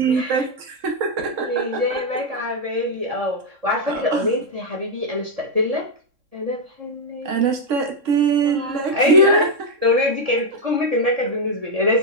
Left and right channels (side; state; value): left; late; 3.6 ms